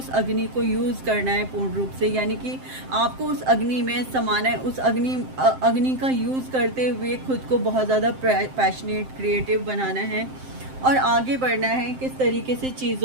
अग्नि को यूज़ करना है पूर्ण रूप से, यानी कि आपको उस अग्नि में समाना है, उस अग्नि का यूज़ करते हुए खुद को बहुत ज़्यादा पैशनेट, क्रिएटिव बनाना है और आगे बढ़ना है। किस तरीके से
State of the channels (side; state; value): left; late; 7.7 ms